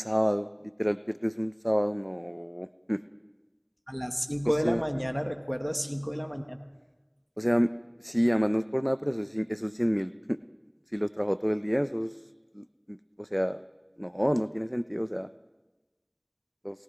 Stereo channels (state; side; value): identical; both; correlation 1.00